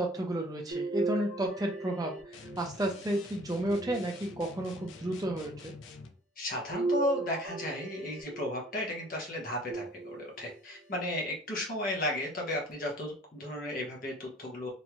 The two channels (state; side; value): normal; both; correlation 0.53